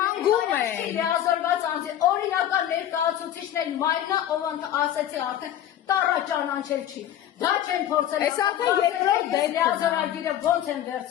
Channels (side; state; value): right; quieter; 11.3 dB